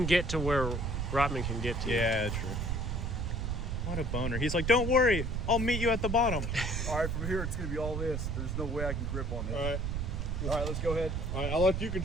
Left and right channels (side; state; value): right; noise; rumble, 1 dB below the sound